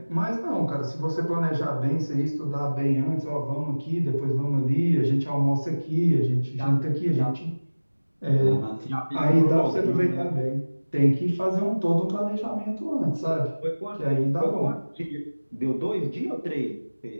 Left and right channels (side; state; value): both; inverted; correlation -1.00